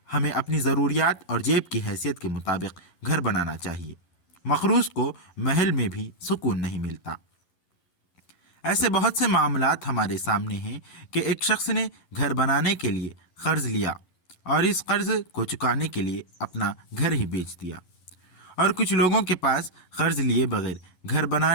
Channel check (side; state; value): right; late; 11 ms